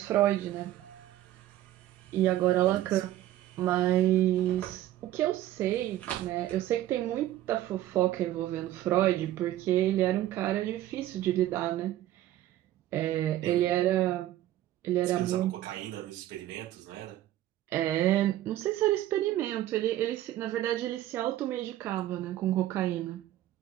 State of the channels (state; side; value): quieter; left; 13.9 dB